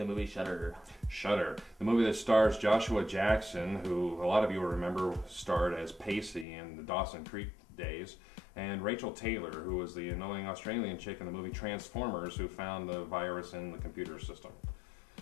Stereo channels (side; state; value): right; drops out; at 6.5 s